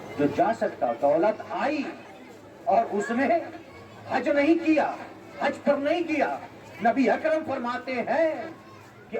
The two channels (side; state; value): both; identical; correlation 1.00